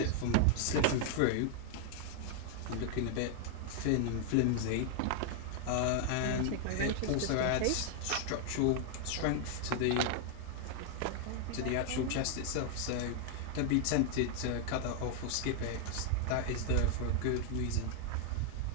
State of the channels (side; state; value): both; different; correlation 0.00